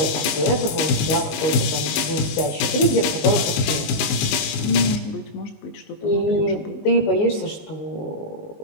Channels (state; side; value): late; right; 20 ms